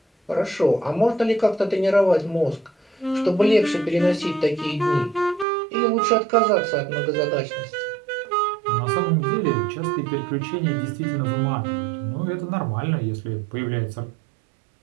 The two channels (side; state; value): left; drops out; at 5.5 s